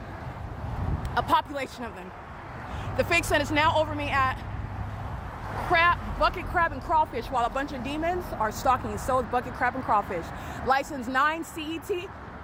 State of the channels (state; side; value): identical; both; correlation 1.00